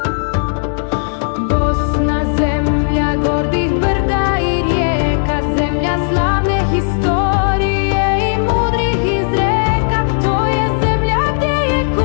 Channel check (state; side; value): silent; right; 70 dB below the other